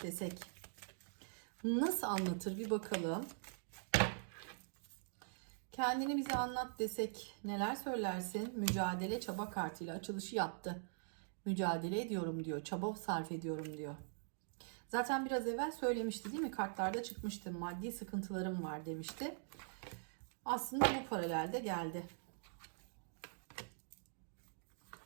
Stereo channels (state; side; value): silent; left; digital silence